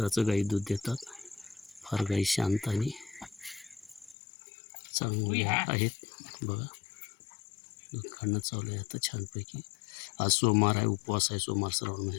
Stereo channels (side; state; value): right; drops out; at 4.2 s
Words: गाई दूध देतात. फार गाई शांत आणि चांगल्या आहेत. बघा दूध काढणं चालू आहे आता छानपैकी. आज सोमवार आहे, उपवास आहे. सोमवार श्रावण